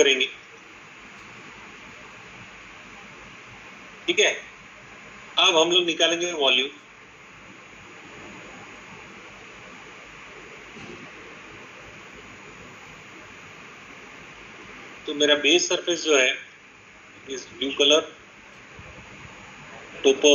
ठीक है। अब हम लोग निकालेंगे वॉल्यूम। तो मेरा बेस सरफेस जो है इस blue colour, topo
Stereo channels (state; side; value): identical; both; correlation 1.00